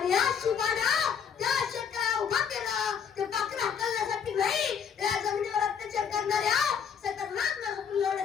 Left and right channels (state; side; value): quieter; right; 7.3 dB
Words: या शिवबानं त्या शेतकऱ्याला उभा केलं. ते पाखरं हाकलण्यासाठी नाही, त्या जमिनीवर अत्याचार करणाऱ्या सतर्नांना हुकूम